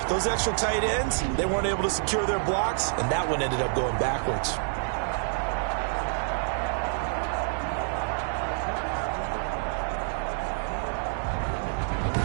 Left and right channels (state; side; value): silent; left; digital silence